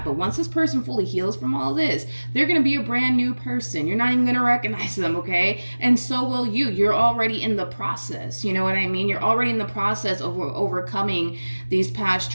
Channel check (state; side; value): inverted; both; correlation -1.00